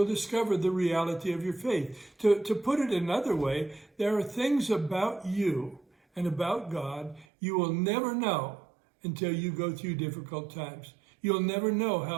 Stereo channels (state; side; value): drops out; left; at 7.2 s